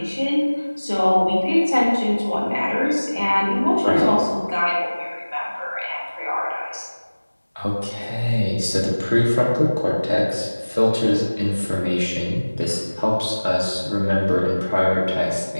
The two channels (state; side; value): inverted; both; correlation -1.00